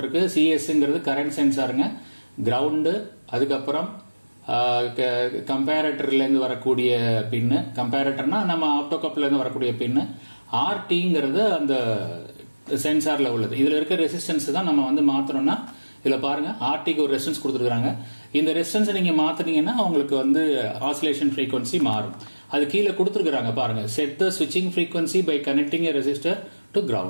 சிஎஸ்ங்கிறது கரண்ட் சென்சாருங்க. கிரவுண்டு, அதுக்கப்புறம் கம்பேரட்டர்ல இருந்து வரக்கூடிய பின்னு. கம்பேரட்டர்னா நம்ம ஆப்டோகப்ல இருந்து வரக்கூடிய பின்னு. RTங்கிறது அந்த சென்சார்ல உள்ளது. இதுல இருக்க ரெசிஸ்டன்ஸ் தான் நம்ம வந்து மாத்தணும்னா இதுல பாருங்க ஆர்டிக்கு ஒரு ரெசிஸ்டன்ஸ் கொடுத்துருக்காங்க. இந்த ரெசிஸ்டன்ஸ் நீங்க மாத்தினீங்கன்னா உங்களுக்கு வந்து ஆசிலேஷன் ஃப்ரீக்வன்சி மாறும். அது கீழே கொடுத்துருக்காங்க பாருங்க. செட் த ஸ்விட்சிங் frequency by connecting a resistor to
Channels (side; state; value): both; inverted; correlation -1.00